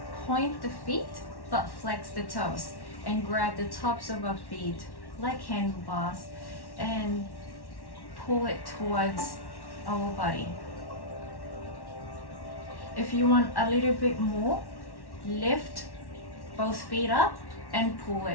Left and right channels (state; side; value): late; right; 1.1 ms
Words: feet but flex the toes and grab the tops of our feet like handlebars and pull it towards our body. If you want a little bit more, lift both feet up and pull